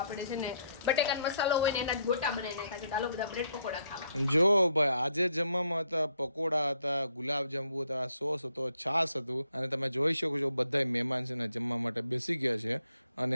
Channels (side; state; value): both; inverted; correlation -0.72